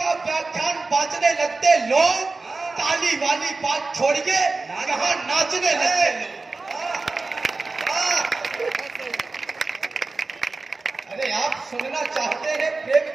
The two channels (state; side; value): quieter; left; 3.7 dB